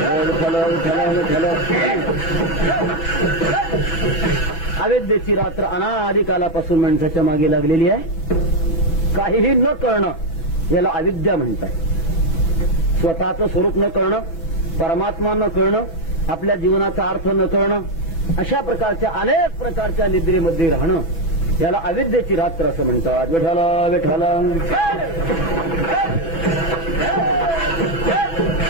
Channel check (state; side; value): late; right; 6.1 ms